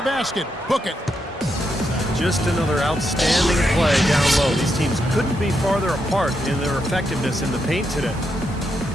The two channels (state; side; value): normal; both; correlation 0.82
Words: basket. Book it. Just another outstanding play down low. These teams couldn't be farther apart in their effectiveness in the paint today.